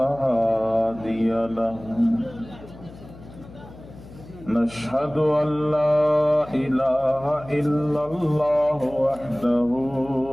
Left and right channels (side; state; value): left; noise; hum, 18 dB below the sound